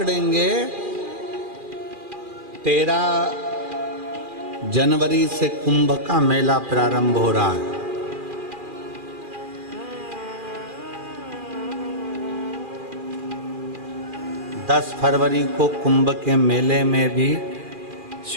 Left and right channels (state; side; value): late; left; 2.4 ms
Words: 13 जनवरी से कुंभ का मेला प्रारंभ हो रहा है। दस फरवरी को कुंभ के मेले में भी